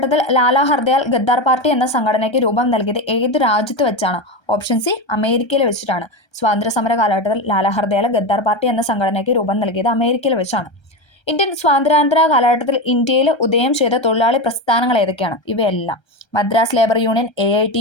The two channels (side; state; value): right; late; 1.3 ms